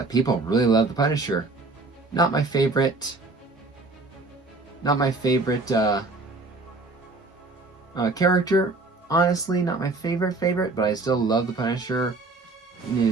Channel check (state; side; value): quieter; left; 3.3 dB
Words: people really love the Punisher. Not my favorite. Character. Honestly, not my favorite, but I still love the Punisher in